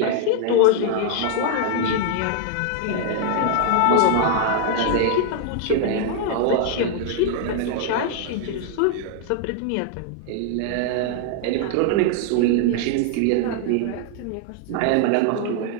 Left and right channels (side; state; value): both; different; correlation 0.00